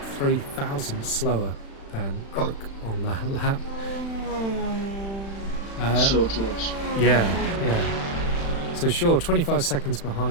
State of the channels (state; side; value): late; right; 36 ms